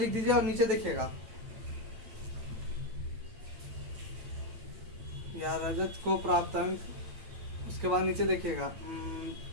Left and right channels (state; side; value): late; left; 9.0 ms